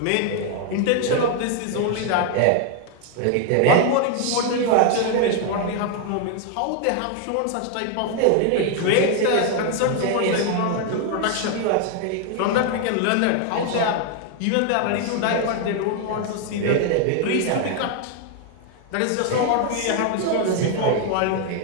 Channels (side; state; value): both; different; correlation 0.00